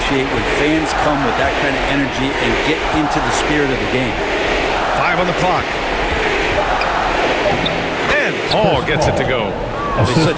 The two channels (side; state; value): both; identical; correlation 1.00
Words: when fans come with that kind of energy and get into the spirit of the game. 5 on the clock. And Paul gets it to go. He's